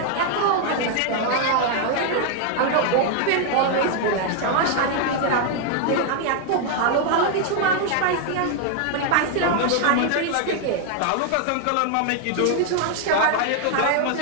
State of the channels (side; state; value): both; different; correlation 0.00